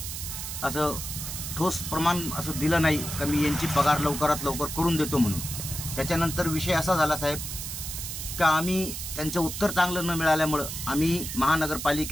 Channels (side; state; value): right; noise; hiss, 6 dB below the sound